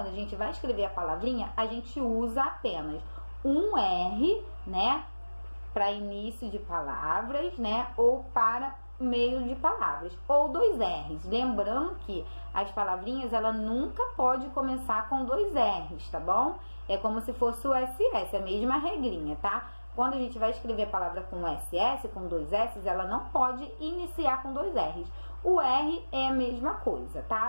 a gente vai escrever a palavrinha, a gente usa apenas um R, né, para início de palavras, né, ou para meio de palavras, ou 2 R's. Lembrando que as palavrinhas, ela nunca pode começar com 2 R's, tá bom? É como se fosse o SS, a mesma regrinha, tá? Quando a gente vai escrever a palavra com SS, com 2 S's, ela não pode iniciar com 2 R's. O R é a mesma coisa,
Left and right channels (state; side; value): inverted; both; correlation -1.00